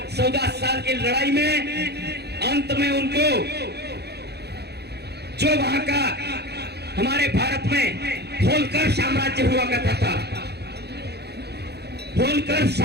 14 साल की लड़ाई में अंत में उनको जो वहां का हमारे भारत में होलकर साम्राज्य हुआ करता था, होलकर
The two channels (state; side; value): late; left; 0.48 ms